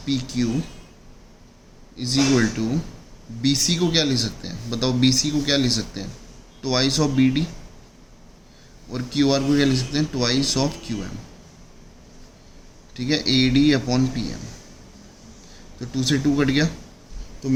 P Q is equal to B C को क्या ले सकते हैं? बताओ बी सी को क्या ले सकते हैं? Twice of B D. और क्यू आर को क्या ले सकते हैं? ट्वाइस ऑफ क्यू एम, ठीक है। A D upon P M, तो 2 से 2 कट गया, तो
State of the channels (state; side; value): identical; both; correlation 1.00